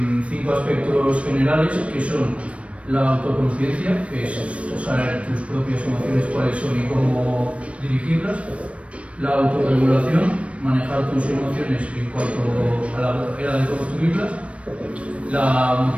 5 aspectos generales que son la autoconciencia, que es saber tus propias emociones cuáles son y cómo dirigirlas, la autorregulación, manejar tus emociones en cuanto a la manera de construirlas, la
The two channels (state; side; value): late; left; 0.062 ms